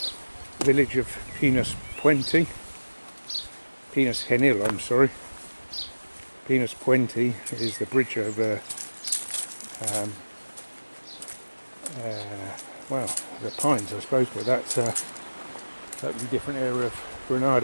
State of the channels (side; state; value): both; inverted; correlation -1.00